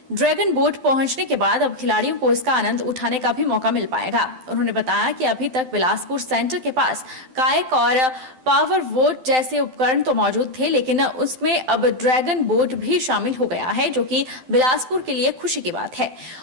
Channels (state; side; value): late; left; 12 ms